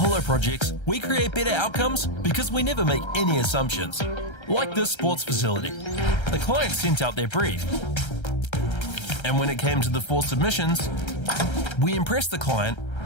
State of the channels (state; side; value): late; right; 1.3 ms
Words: Projects, we create better outcomes because we never make any assumptions. Like this sports facility. The client sent out their brief. And when it came to the 4 submissions, we impressed the client